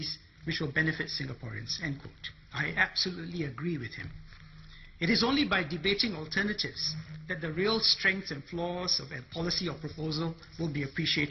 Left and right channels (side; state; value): both; identical; correlation 1.00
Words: which will benefit Singaporeans," end quote. I absolutely agree with him. It is only by debating alternatives that the real strengths and flaws of a policy or proposal will be